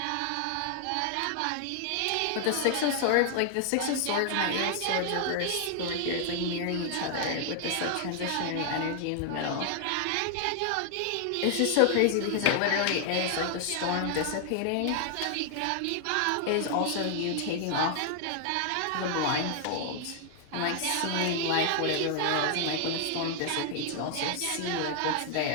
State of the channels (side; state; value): both; different; correlation 0.00